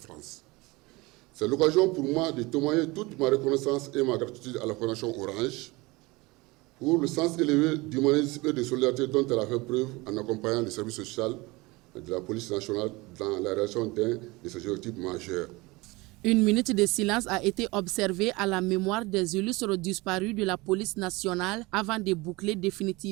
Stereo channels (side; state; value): left; quieter; 23.1 dB